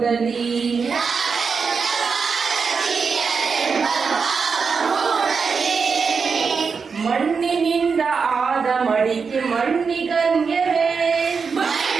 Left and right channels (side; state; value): left; quieter; 5.4 dB